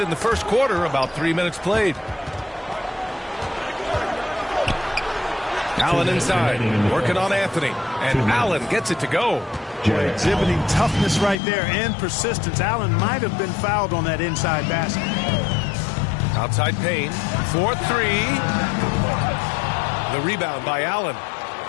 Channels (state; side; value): drops out; right; at 11.4 s